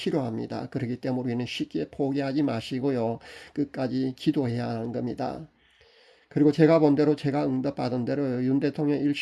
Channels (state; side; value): identical; both; correlation 1.00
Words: 그렇기 때문에 우리는 쉽게 포기하지 마시고요, 끝까지 기도해야 하는 겁니다. 그리고 제가 본 대로, 제가 응답받은 대로 윤 대통령